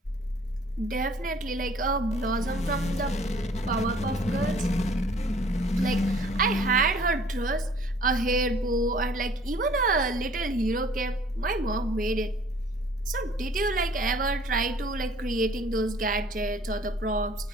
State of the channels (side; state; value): both; normal; correlation 0.55